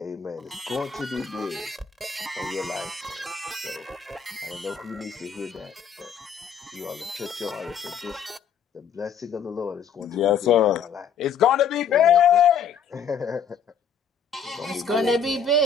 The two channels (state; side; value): quieter; right; 6.7 dB